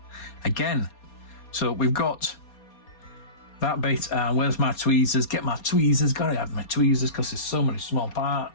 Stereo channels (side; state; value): right; late; 4.3 ms